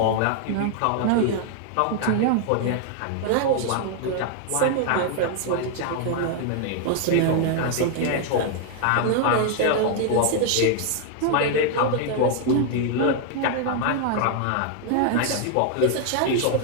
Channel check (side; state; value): both; different; correlation 0.00